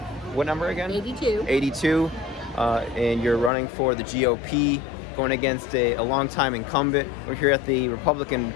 what number again? 82. 82, and you're running for the GOP, going against a longtime incumbent. We're here at the Republican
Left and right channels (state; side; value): drops out; right; at 3.5 s